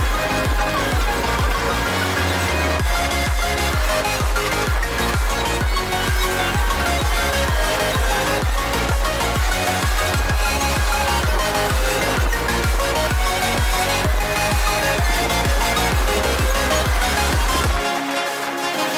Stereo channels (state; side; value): identical; both; correlation 1.00